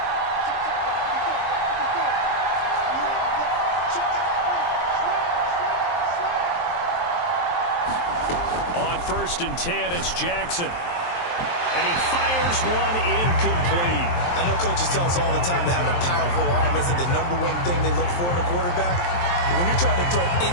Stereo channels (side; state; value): right; late; 23 ms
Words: On 1st and 10, it's Jackson. And he fires one incomplete. I know coaches tell us all the time that having a powerful arm isn't the #1 thing they look for in a quarterback. But when you're trying to throw